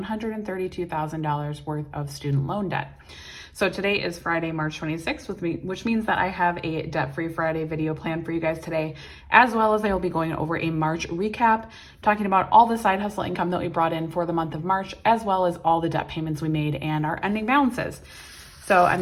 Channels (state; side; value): identical; both; correlation 1.00